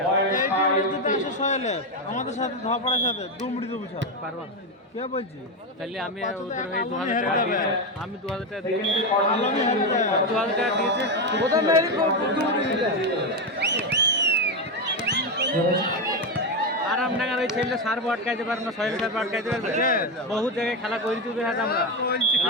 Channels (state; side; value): normal; both; correlation 0.10